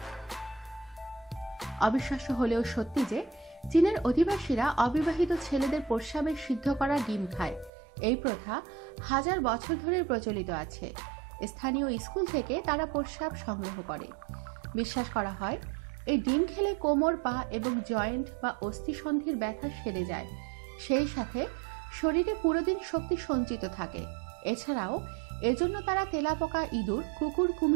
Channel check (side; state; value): left; drops out; at 7.7 s